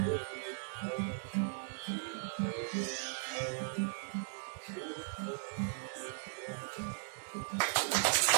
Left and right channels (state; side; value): silent; left; 52 dB below the other